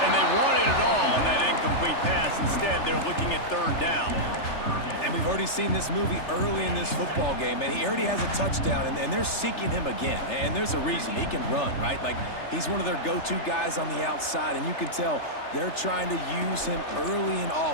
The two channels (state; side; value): late; right; 3.3 ms